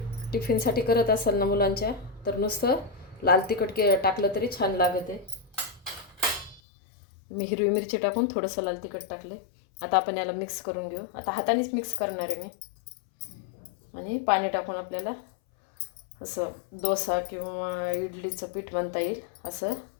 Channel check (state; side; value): drops out; right; at 6.6 s